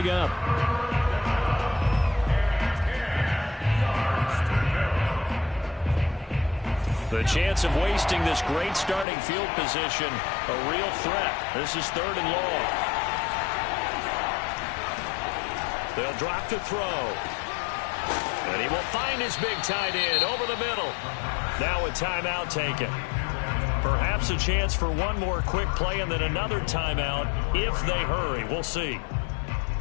up. The chance of wasting this great starting field position, a real threat. This is 3rd and long. They'll drop to throw. And he will find his big tight end over the middle. Now a timeout taken. Perhaps a chance for one more quick play and then another timeout if they hurry. We'll see.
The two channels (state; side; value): drops out; right; at 9.1 s